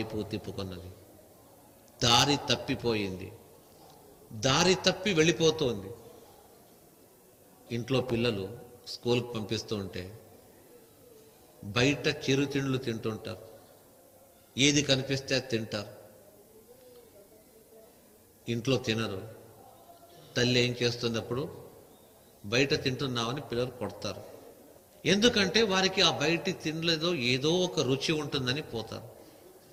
తిప్పుకున్నది. దారి తప్పిపోయింది, దారి తప్పి వెళ్ళిపోతుంది. ఇంట్లో పిల్లలు స్కూల్కి పంపిస్తూ ఉంటే బయట చిరుతిండ్లు తింటుంటారు, ఏది కనిపిస్తే అది తింటారు. ఇంట్లో తినరు. తల్లి ఏం చేస్తుంది? అప్పుడు బయట తింటున్నామని పిల్లలు కొడతారు. ఎందుకంటే వారికి ఆ బయటి తినలేదో ఏదో ఒక రుచి ఉంటుందని పోతారు.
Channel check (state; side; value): identical; both; correlation 1.00